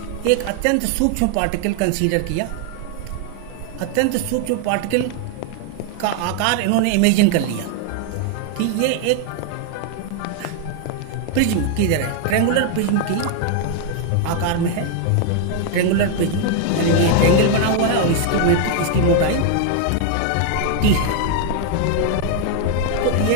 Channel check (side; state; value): both; different; correlation 0.00